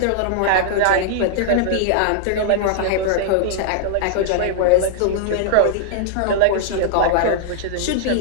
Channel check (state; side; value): different; both; correlation -0.01